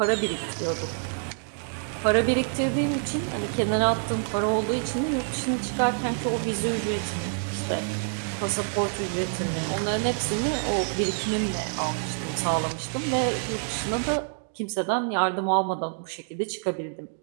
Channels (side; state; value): left; silent; digital silence